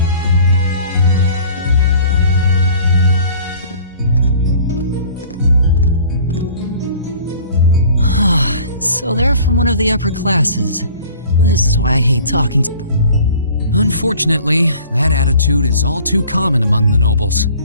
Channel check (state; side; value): inverted; both; correlation -0.49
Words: So they're from one of the upper classes. This is why I hate talking to... Unfortunately, that attitude is all too common among the nobles.